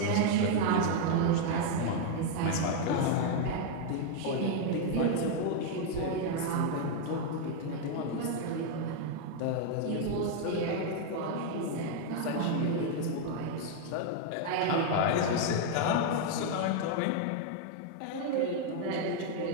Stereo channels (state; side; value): different; both; correlation 0.00